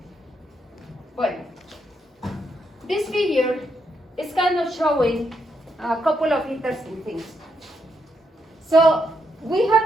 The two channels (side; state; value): both; normal; correlation 0.79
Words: Bueno, this figure is kind of showing a couple of interesting things. So we have